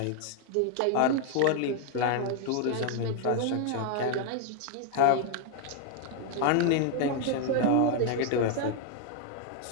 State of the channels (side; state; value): both; different; correlation 0.00